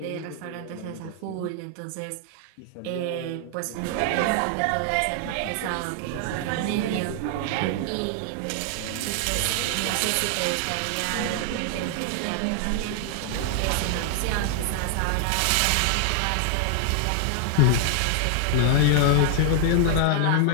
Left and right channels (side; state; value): both; different; correlation 0.00